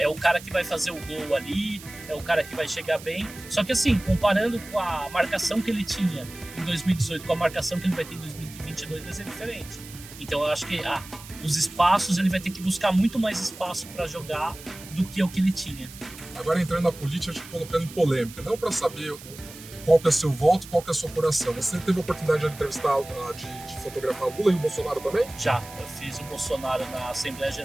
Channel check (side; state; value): right; noise; hiss, 16 dB below the sound